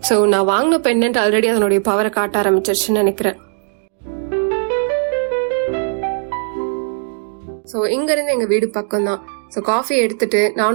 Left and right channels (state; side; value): silent; left; digital silence